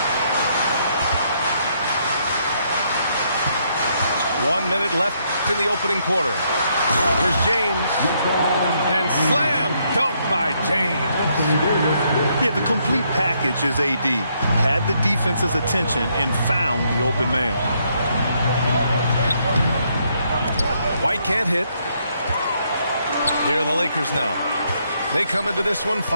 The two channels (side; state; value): both; inverted; correlation -0.73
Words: One minute left in the opening quarter. Here's James. And slam dunk by James. Yeah, the complete package is AD. Had the defense's attention and found the open man. White can't hit. Here are the Lakers now. They come into this one